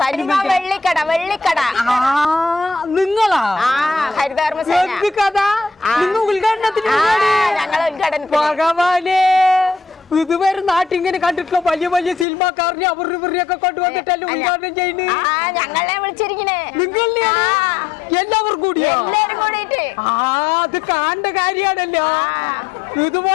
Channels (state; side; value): drops out; right; at 12.2 s